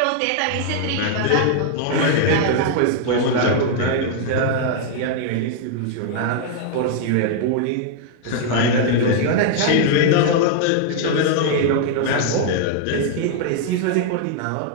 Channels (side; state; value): both; different; correlation 0.00